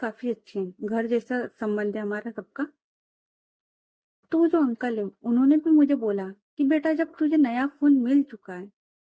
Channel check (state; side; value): identical; both; correlation 1.00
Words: अच्छे हैं, घर जैसा संबंध है हमारा सबका। तो वो जो अंकल है उन्होंने भी मुझे बोला कि बेटा जब तुझे नया फोन मिल चुका है,